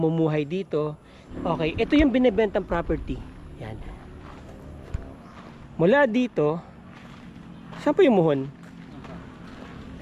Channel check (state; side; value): identical; both; correlation 1.00